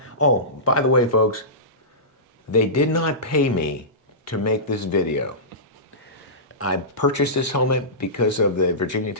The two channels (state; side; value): normal; both; correlation -0.19